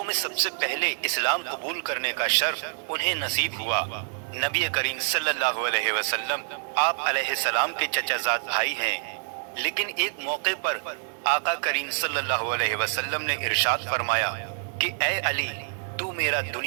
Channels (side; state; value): left; silent; 56 dB below the other